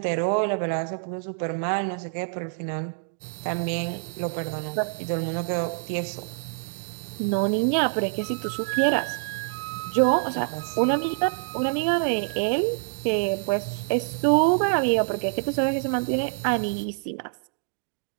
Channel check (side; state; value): left; silent; digital silence